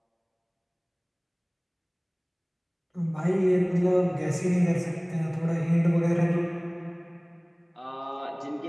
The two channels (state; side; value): identical; both; correlation 1.00